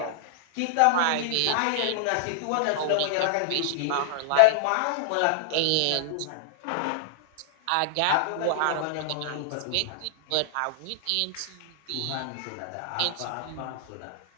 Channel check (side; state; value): both; different; correlation -0.01